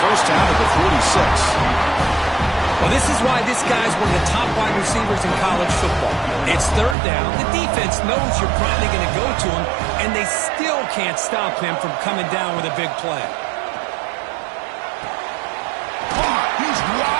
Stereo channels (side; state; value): left; drops out; at 7.0 s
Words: first down at the 46. Well, this is why this guy's one of the top wide receivers in college football. It's third down. The defense knows you're probably going to go to him, and they still can't stop him from coming down with a big play. Oh, he's